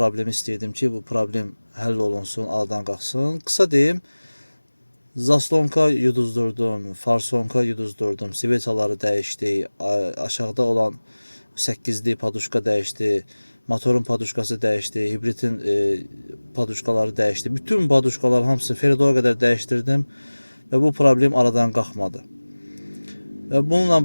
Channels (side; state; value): both; inverted; correlation -1.00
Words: istəyirdim ki, bu problem həll olunsun, aradan qalxsın. Qısa deyim, zaslonka yuduzdurdum, farsonka yuduzdurdum, svetaları dəyişdi, aşağıda olan 8'li paduşka dəyişdi, motorun paduşkası dəyişdi, hibridin paduşkaları dəyişdi. Bütün paduşkalar hamısını Feridoya qədər dəyişdirdim və bu problem aradan qalxmadı. Və